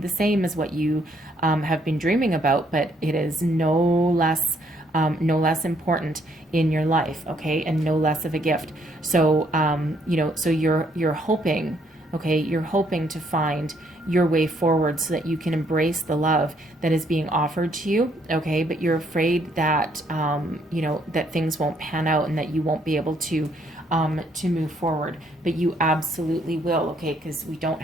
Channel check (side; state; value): both; normal; correlation 0.69